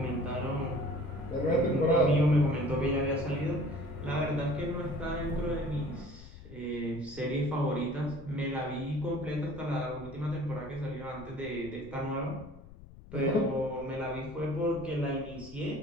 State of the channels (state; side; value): noise; left; rumble, 18 dB below the sound